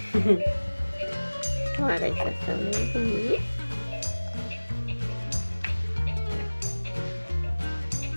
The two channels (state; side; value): inverted; both; correlation -1.00